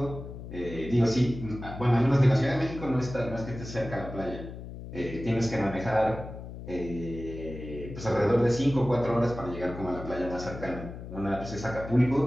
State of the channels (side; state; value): left; noise; hum, 11 dB below the sound